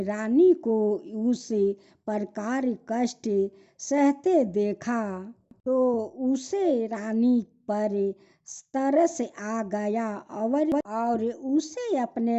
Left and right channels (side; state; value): both; identical; correlation 1.00